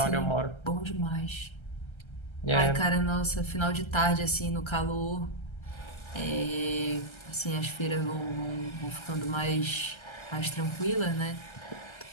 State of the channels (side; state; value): right; late; 1.3 ms